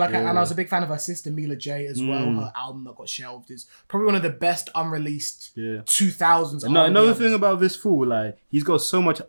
and I was a big fan of her sister Mila J as well. Her album that got shelved is probably one of the best unreleased 2000s. Another thing about this fool, like, he's got so much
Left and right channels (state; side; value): inverted; both; correlation -1.00